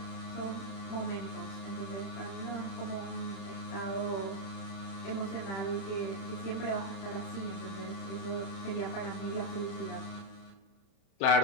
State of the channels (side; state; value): right; late; 31 ms